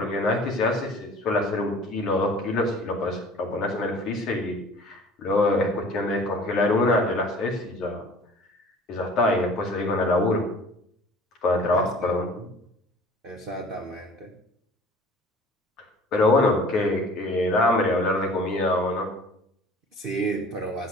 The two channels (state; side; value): normal; both; correlation 0.48